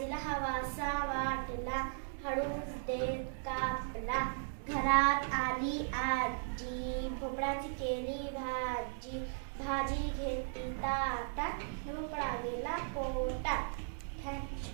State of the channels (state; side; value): silent; left; digital silence